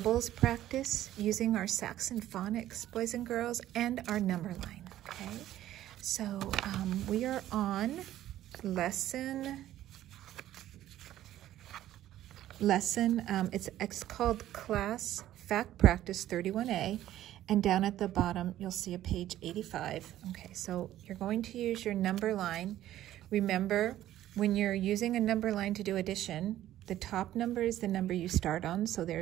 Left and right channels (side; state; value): left; quieter; 13.2 dB